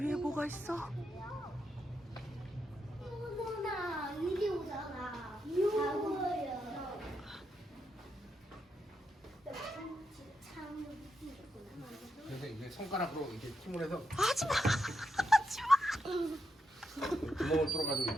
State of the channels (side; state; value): both; normal; correlation 0.83